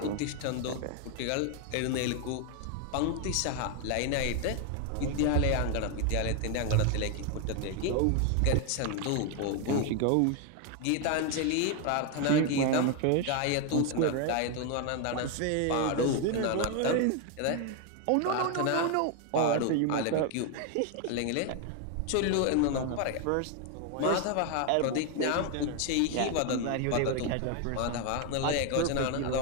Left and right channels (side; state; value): both; different; correlation 0.01